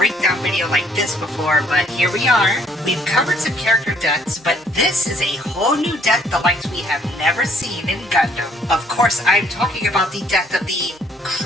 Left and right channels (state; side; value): normal; both; correlation 0.63